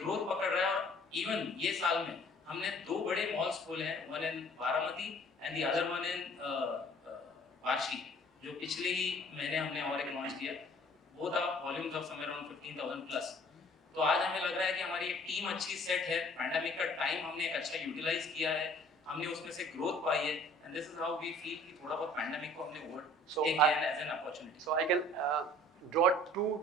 पकड़ रहा है। और इवन ये साल में हमने 2 बड़े मॉल्स खोले हैं, one in Baramati and the other one in वार्शी, जो पिछले ही महीने हमने और एक लॉन्च किया। वो था volumes of somewhere around 15,000 plus. तो आज हमें लग रहा है कि हमारी एक टीम अच्छी सेट है, पैंडेमिक का टाइम हमने एक अच्छा यूटिलाइज किया है, हमने उसमें से ग्रोथ पाई है, and this is how we feel कि थोड़ा बहुत पैंडेमिक को हमने ओवरटेक किया है as an opportunity. So I can draw 2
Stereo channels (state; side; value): normal; both; correlation 0.53